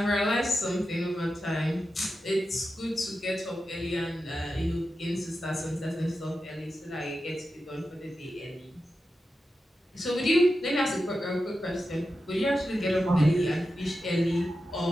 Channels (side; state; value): both; normal; correlation 0.91